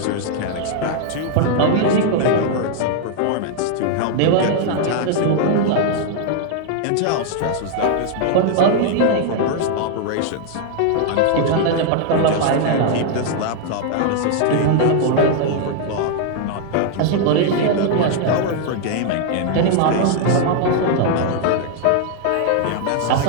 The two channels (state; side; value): different; both; correlation 0.00